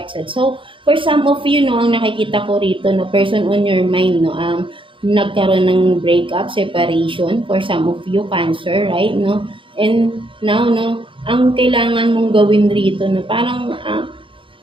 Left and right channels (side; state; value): left; late; 0.25 ms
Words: So for some of you, no, ang nakikita ko rito, no, person on your mind, no, nagkaroon ng breakup, separation, for some of you, cancer, right, no, and now, no, ang kailangan mong gawin rito, no, parang